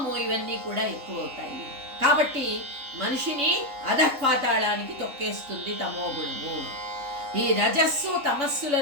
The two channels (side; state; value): left; late; 3.5 ms